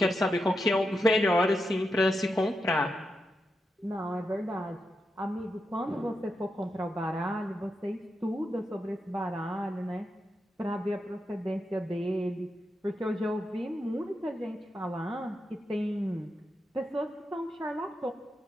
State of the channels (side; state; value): both; normal; correlation 0.86